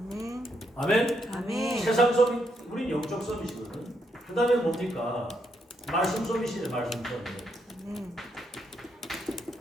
아멘. 아멘. 세상 서밋, 우린 영적 서밋이거든. 그 다음에 뭡니까? 말씀 서밋이네. 말씀 서밋.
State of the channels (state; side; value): normal; both; correlation 0.77